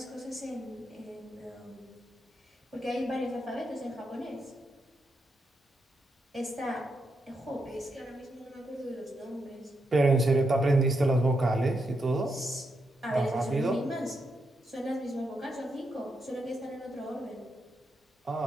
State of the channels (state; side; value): normal; both; correlation 0.83